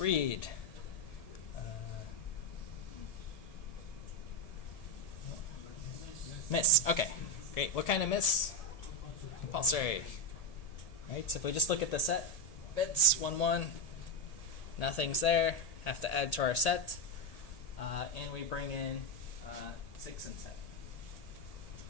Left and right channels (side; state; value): right; late; 1.8 ms